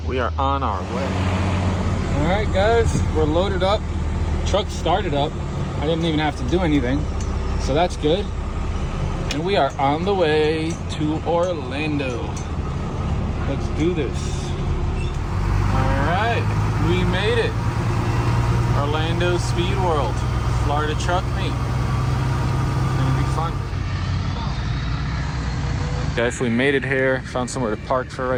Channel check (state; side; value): identical; both; correlation 1.00